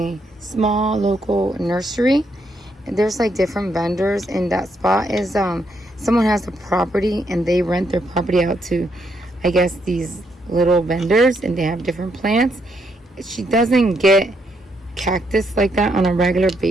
small local nursery. There's like different vendors in that spot. Is someone has a property and they rent their property out to, I guess, these little vendors, and they have different plants. She doesn't get cactus like that on a regular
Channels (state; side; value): normal; both; correlation 0.76